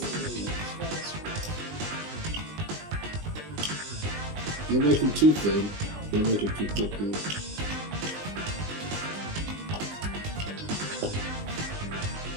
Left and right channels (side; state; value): left; late; 20 ms